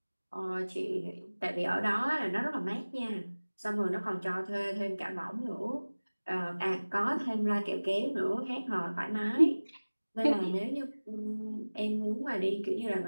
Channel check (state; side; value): inverted; both; correlation -1.00